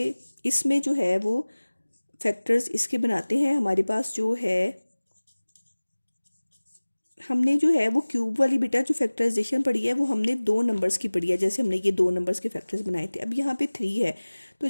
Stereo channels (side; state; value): both; inverted; correlation -1.00